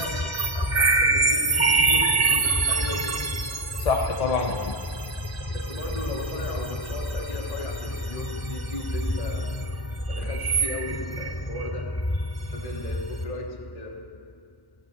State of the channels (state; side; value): late; right; 1.1 ms